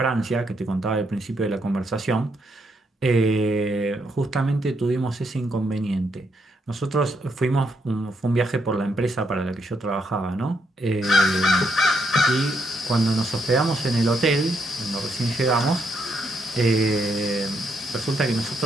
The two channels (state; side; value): normal; both; correlation 0.77